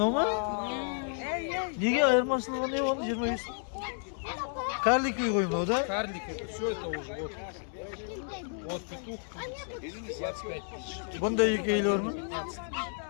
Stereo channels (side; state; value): right; silent; 57 dB below the other